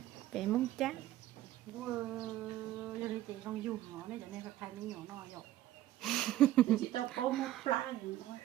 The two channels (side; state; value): left; quieter; 14.2 dB